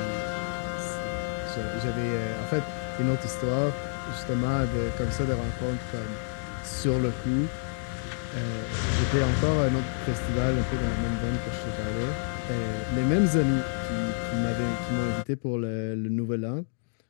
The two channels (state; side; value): silent; right; digital silence